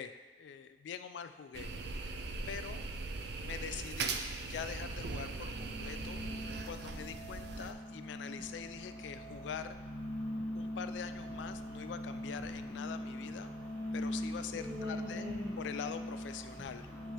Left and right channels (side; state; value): both; normal; correlation 0.49